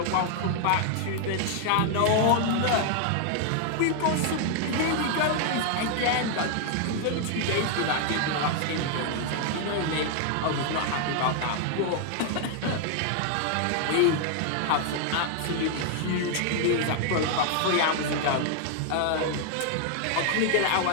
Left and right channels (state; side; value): different; both; correlation 0.00